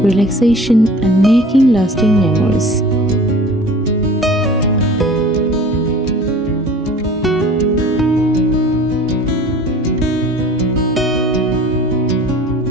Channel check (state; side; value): normal; both; correlation 0.44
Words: relaxation, and making lasting memories.